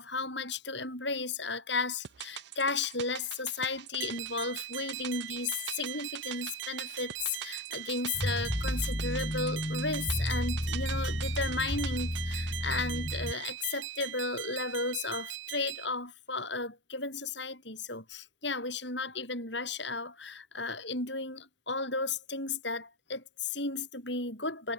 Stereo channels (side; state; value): both; normal; correlation 0.17